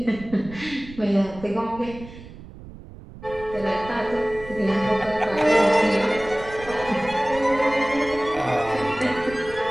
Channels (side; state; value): right; noise; rumble, 16 dB below the sound